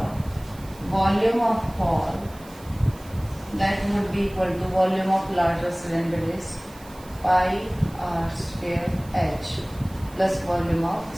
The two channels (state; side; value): noise; right; hiss, 22 dB below the sound